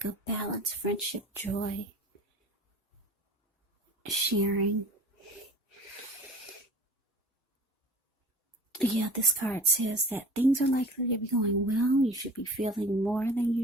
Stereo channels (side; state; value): both; normal; correlation 0.41